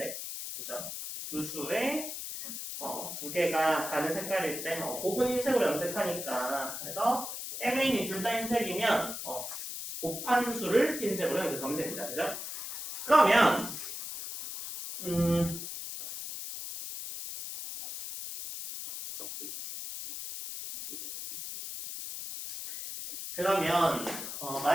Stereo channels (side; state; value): left; noise; hiss, 7 dB below the sound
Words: 그죠? 두 수의 두 개가 다른 색깔일 때 곱은 흰색으로 염색하니까 그래서 mn이 둘 다 흰색이면 곱한 수를 흰색으로 염색하면 됩니다. 그죠? 그러면